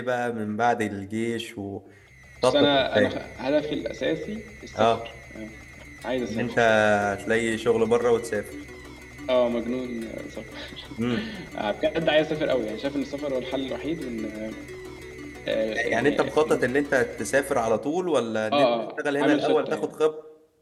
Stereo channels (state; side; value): identical; both; correlation 1.00